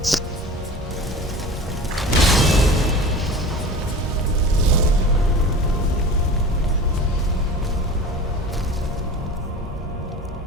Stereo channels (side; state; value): both; normal; correlation 0.36